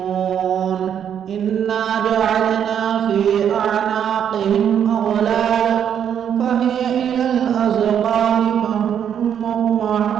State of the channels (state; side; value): quieter; left; 8.8 dB